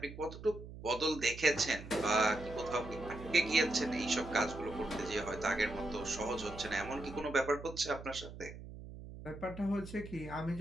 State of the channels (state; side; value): noise; right; hum, 13 dB below the sound